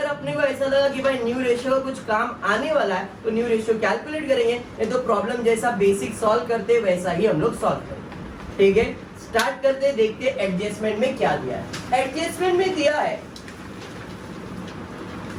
अपने को ऐसा लगा कि भाई न्यू रेशियो का कुछ काम आने वाला है तो न्यू रेशियो कैलकुलेट करेंगे, नहीं तो प्रॉब्लम जैसा बेसिक सॉल्व करते वैसा ही हम लोग सॉल्व करेंगे। ठीक है, स्टार्ट करते, देखते एडजस्टमेंट में क्या दिया है। एडजस्टमेंट में दिया है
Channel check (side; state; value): both; identical; correlation 1.00